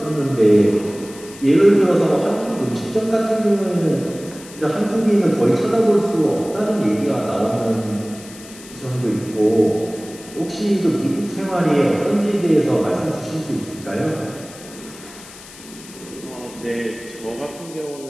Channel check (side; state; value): left; noise; hiss, 18 dB below the sound